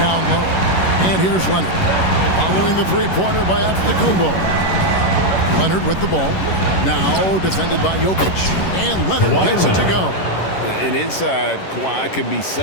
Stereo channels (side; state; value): right; late; 11 ms